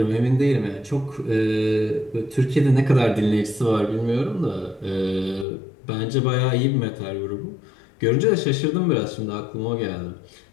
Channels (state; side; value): drops out; right; at 5.5 s